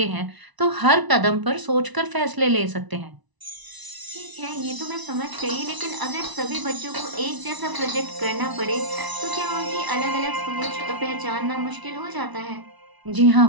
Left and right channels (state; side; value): late; left; 1.0 ms